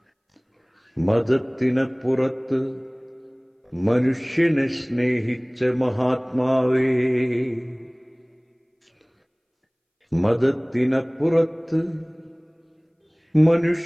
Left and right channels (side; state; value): both; identical; correlation 1.00